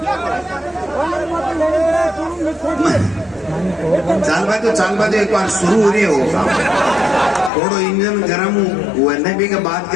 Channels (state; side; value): drops out; right; at 7.5 s